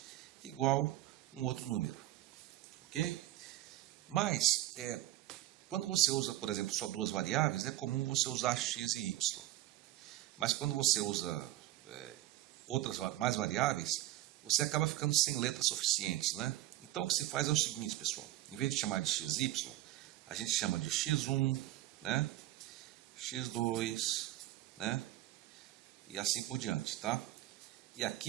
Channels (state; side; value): quieter; left; 15.4 dB